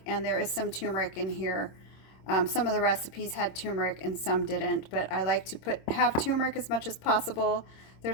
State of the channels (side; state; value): right; late; 26 ms